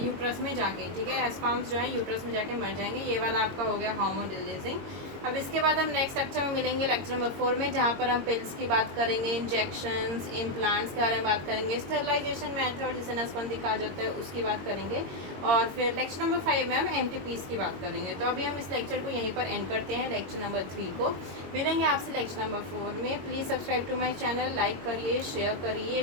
यूट्रस में जाके, ठीक है, स्पर्म्स जो है यूट्रस में जाके मर जाएंगे। ये वाला आपका हो गया हार्मोन रिलीजिंग। अब इसके बाद हम नेक्स्ट लेक्चर में मिलेंगे, लेक्चर नंबर 4 में, जहाँ पर हम पिल्स की बात करेंगे, इंजेक्शंस, इम्प्लांट्स के बारे में बात करेंगे, स्टेरिलाइजेशन मेथड जिसे नसबंदी कहा जाता है उसकी बात करेंगे, और फिर लेक्चर नंबर 5 में हम MTPs की बात करेंगे। तो अभी हम इस लेक्चर को यहीं पर एंड करते हैं, लेक्चर नंबर 3 को। मिलेंगे आपसे लेक्चर नंबर 4 में। Please subscribe to my channel, like करिए, शेयर करिए,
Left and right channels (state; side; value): late; left; 22 ms